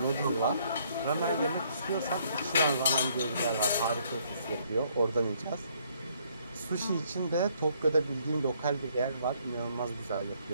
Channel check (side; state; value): both; inverted; correlation -0.67